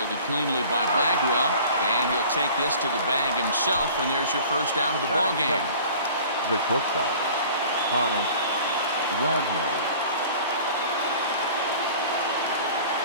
cleanly by Bagwell, and he'll take this to the bag himself, and there's your first out of the ball game. The shortstop, Wagner.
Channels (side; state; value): both; inverted; correlation -0.45